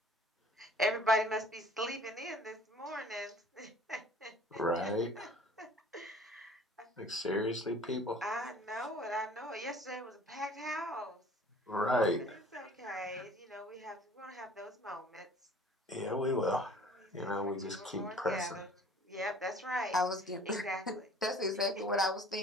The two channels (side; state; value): both; normal; correlation 0.50